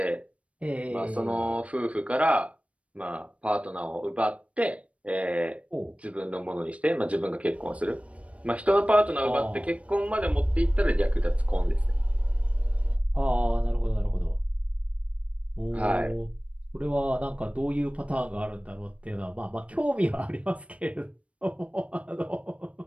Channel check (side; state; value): left; late; 0.064 ms